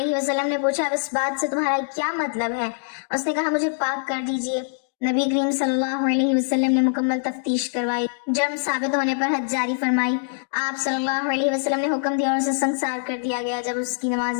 وسلم نے پوچھا، اب اس بات سے تمہارا کیا مطلب ہے؟ اس نے کہا، مجھے پاک کر دیجیے۔ نبی کریم صلی اللہ علیہ وسلم نے مکمل تفتیش کروائی، جرم ثابت ہونے پر حد جاری فرمائی۔ آپ صلی اللہ علیہ وسلم نے حکم دیا اور اسے سنسار کر دیا گیا۔ جب اس کی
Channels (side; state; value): right; silent; digital silence